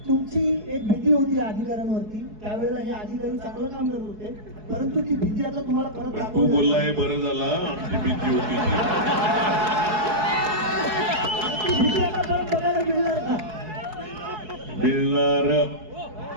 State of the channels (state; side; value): late; left; 4.7 ms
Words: तुमची एक भीती होती अधिकाऱ्यांवरती, त्यावेळेला हे अधिकारी चांगलं काम करत होते, परंतु ती भीती आता तुम्हाला परत तू दाखवली बोलला हे बरं झाला, आमची भीती होती ती. ती भीती आता परत बघायला मिळणार का? मिळणार